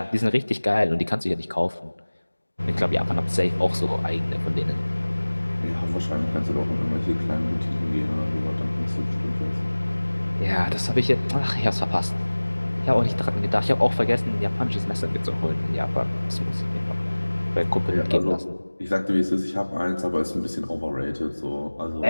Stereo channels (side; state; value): both; inverted; correlation -1.00